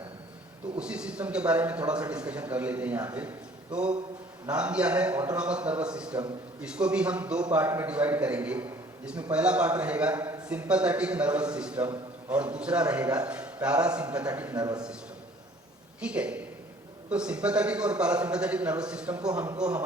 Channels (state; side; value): normal; both; correlation 0.54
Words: है। तो उसी सिस्टम के बारे में थोड़ा सा डिस्कशन कर लेते हैं यहाँ पे। तो नाम दिया है ऑटोनॉमस नर्वस सिस्टम। इसको भी हम दो पार्ट में डिवाइड करेंगे, जिसमें पहला पार्ट रहेगा सिंपैथेटिक नर्वस सिस्टम और दूसरा रहेगा पैरासिम्पैथेटिक नर्वस सिस्टम। ठीक है, तो सिंपैथेटिक और पैरासिम्पैथेटिक नर्वस सिस्टम को हमको